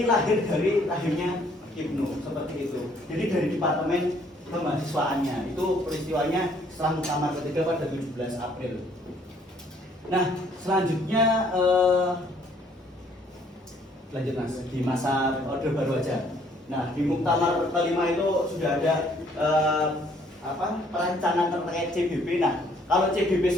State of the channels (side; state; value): both; normal; correlation 0.63